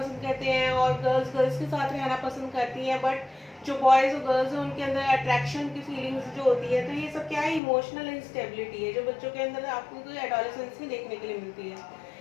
करते हैं और गर्ल्स गर्ल्स के साथ रहना पसंद करती हैं। बट जो बॉयज़ और गर्ल्स हैं उनके अंदर अट्रैक्शन की फीलिंग्स जो होती है, तो ये सब क्या है, इमोशनल इंस्टेबिलिटी है जो बच्चों के अंदर आपको एडोलेसेंस में देखने के लिए मिलती है।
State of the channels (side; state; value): right; drops out; at 7.6 s